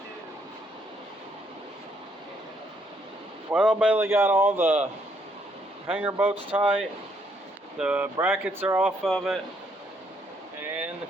Well, Bailey got all the hanger bolts tight, the brackets are off of it, and the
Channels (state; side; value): normal; both; correlation 0.71